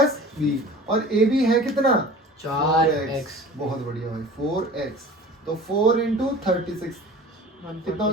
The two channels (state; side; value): normal; both; correlation 0.41